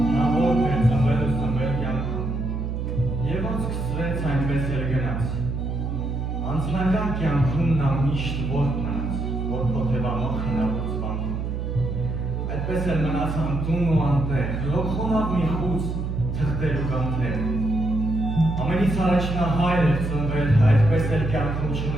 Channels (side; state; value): right; noise; hum, 3 dB below the sound